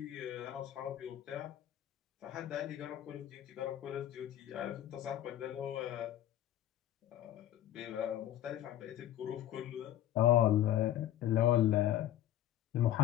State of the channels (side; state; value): right; quieter; 12.4 dB